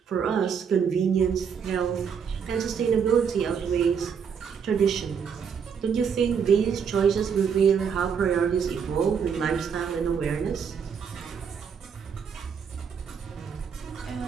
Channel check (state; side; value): quieter; left; 6.9 dB